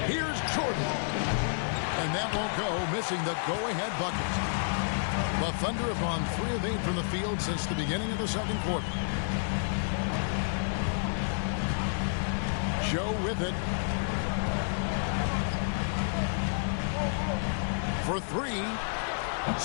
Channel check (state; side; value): silent; right; 58 dB below the other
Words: Here's Jordan. And that won't go, missing the go-ahead bucket. The Thunder have gone 3 of 8 from the field since the beginning of the second quarter. Joe with it. For 3.